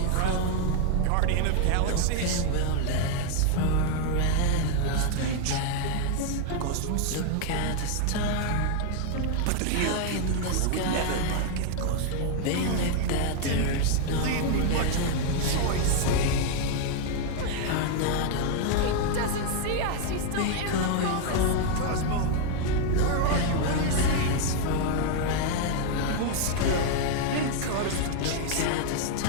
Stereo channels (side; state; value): both; different; correlation 0.00